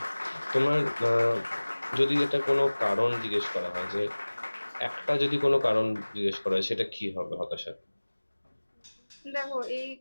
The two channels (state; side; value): inverted; both; correlation -1.00